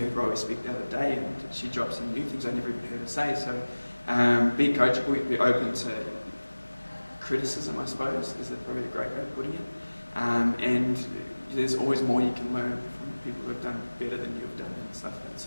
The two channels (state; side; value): inverted; both; correlation -1.00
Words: Rowie speak the other day, and she dropped some new things I never even heard her say. So be coachable, be open to criticism, I suppose, is probably a great way of putting it. And there's always more you can learn from people who have done better than you've done and stuff. And